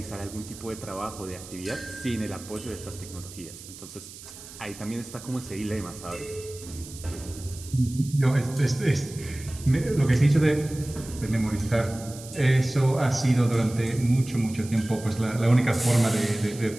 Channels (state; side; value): noise; right; hiss, 16 dB below the sound